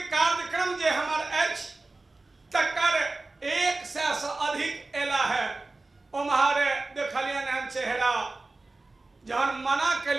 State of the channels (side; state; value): left; quieter; 3.3 dB